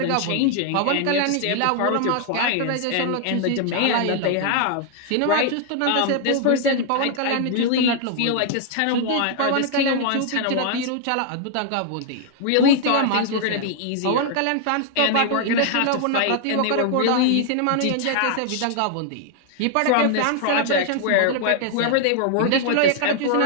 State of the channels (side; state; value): both; different; correlation 0.00